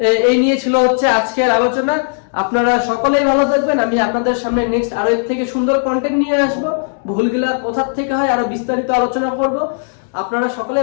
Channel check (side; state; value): right; silent; digital silence